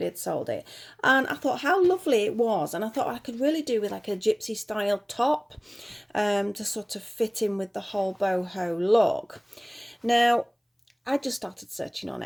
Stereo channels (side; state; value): both; identical; correlation 1.00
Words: had sold it. And I thought how lovely it was. And I thought I could really do with like a gypsy-style top to sort of fit in with the whole boho look. Now, I just started searching on